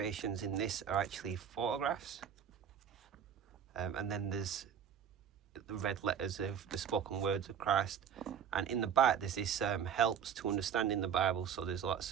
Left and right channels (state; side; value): quieter; left; 8.1 dB